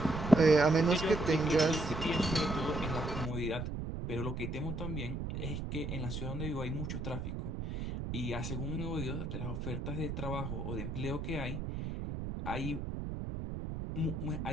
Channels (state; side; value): noise; right; rumble, 4 dB below the sound